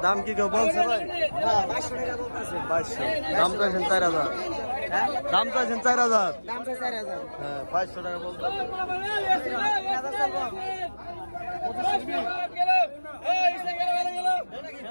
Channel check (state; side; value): inverted; both; correlation -1.00